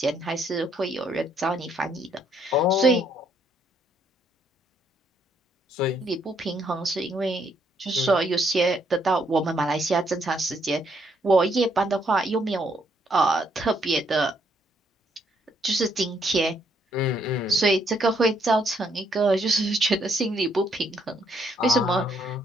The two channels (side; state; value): both; normal; correlation 0.71